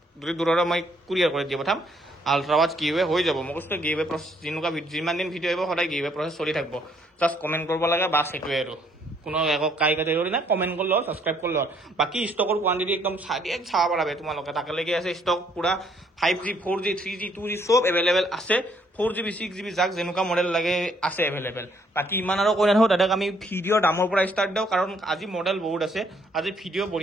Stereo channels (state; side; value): normal; both; correlation 0.67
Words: যদি দূৰৰে মই কুৰিয়াৰ কৰি দি পঠাম আল্ট্ৰাৱাচ গিভৱে হৈ যাব মই কৈছোঁ গিভৱে প্ৰচেছ যেনেকুৱা যিমান দিন ভিডিঅ' আহিব সদায় গিভৱে প্ৰচেছ চলি থাকিব জাষ্ট কমেণ্ট কৰিব লাগে বাছ সেইটোৱে আৰু কোনো একো কাটেগৰি নাই কমেণ্ট কৰিলে হ'ল ছাবস্ক্ৰাইব কৰিলে হ'ল বাকী ষ্টকৰ কোৱান্টিটি একদম চাব পাৰা তোমালোকে তাকেলৈকে আছে ষ্টক পুৰা 5G 4G 3G 2G চব এভেইলেবল আছে 4GB 6GB যাক যেনেকুৱা মডেল লাগে আছে এভেইলেবল বাকী ইমান আৰু কৈ নাথাকোঁ দাদাক আমি ভিডিঅ'ৰ দামৰ পৰা ষ্টাৰ্ট দিওঁ কাৰণ আজি মডেল বহুত আছে আজি ভিডিঅ'